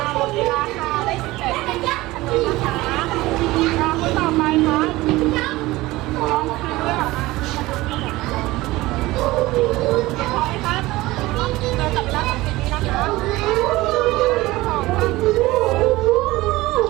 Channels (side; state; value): left; quieter; 19.1 dB